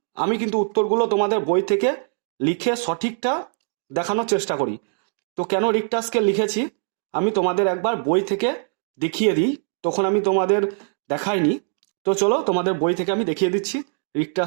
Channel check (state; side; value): silent; left; digital silence